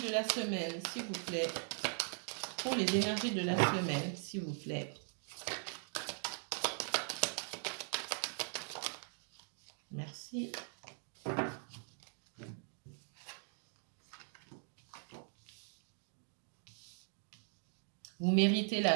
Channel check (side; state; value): left; silent; 51 dB below the other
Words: la semaine, s'il vous plaît. Pour les énergies de la semaine, s'il vous plaît. Merci. Vous méritez